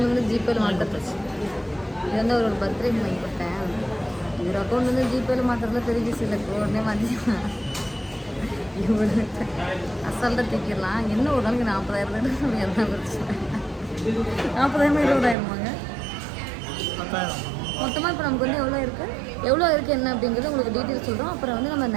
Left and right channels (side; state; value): left; drops out; at 15.4 s